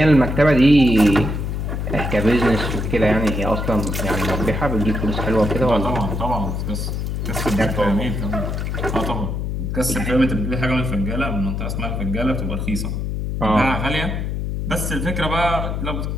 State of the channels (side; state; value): left; noise; hum, 2 dB below the sound